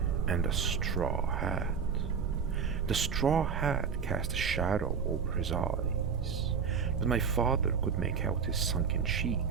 and a straw hat. The straw hat cast a shadow over his eyes, but my father could make out his sunken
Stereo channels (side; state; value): left; quieter; 6.3 dB